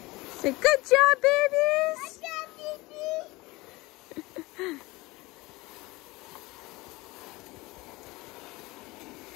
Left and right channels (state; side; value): quieter; right; 21.9 dB